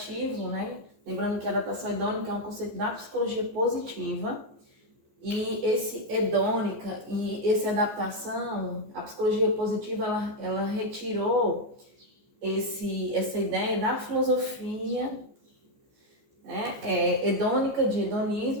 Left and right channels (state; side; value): late; left; 14 ms